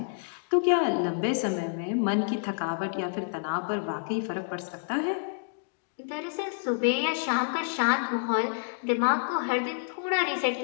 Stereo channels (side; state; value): right; silent; digital silence